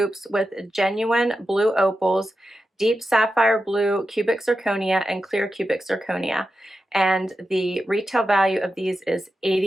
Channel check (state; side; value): normal; both; correlation 0.90